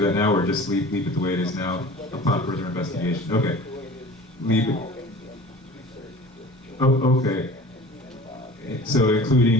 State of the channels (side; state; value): both; normal; correlation 0.41